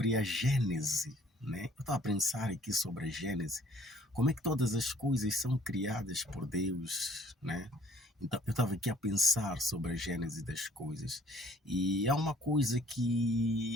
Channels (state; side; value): normal; both; correlation 0.58